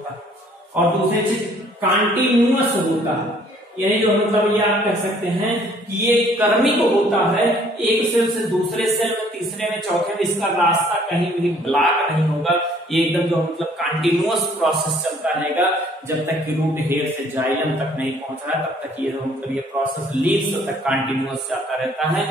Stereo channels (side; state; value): both; normal; correlation 0.59